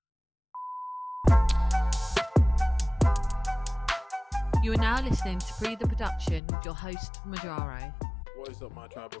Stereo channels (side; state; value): right; drops out; at 6.4 s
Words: You are now listening to Pree Da Production with your host, Majaro. What is up, my tribal